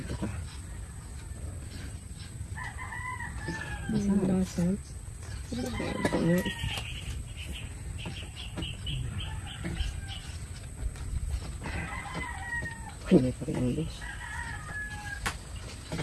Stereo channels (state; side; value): identical; both; correlation 1.00